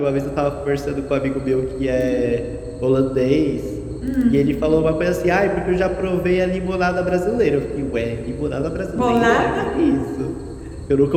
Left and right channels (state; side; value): identical; both; correlation 1.00